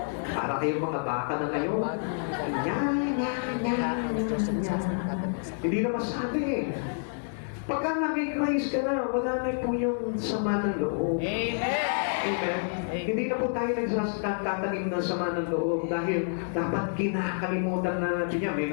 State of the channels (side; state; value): right; silent; 59 dB below the other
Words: Para kayong mga baka na ngayon. Hindi na masabi eh. Pagka naging Christ ka na, wala na po yung sama ng loob. Amen. Amen. Hindi na po tayo nagsasatanim ng sama ng loob dahil dapat kinakalimutan na natin yan. May